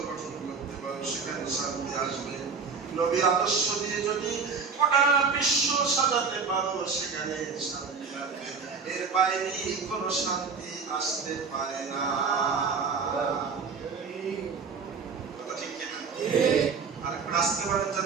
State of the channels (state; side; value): quieter; left; 5.3 dB